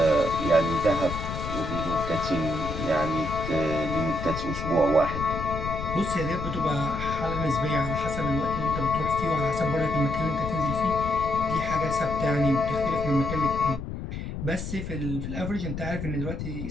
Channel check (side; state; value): left; noise; rumble, 6 dB below the sound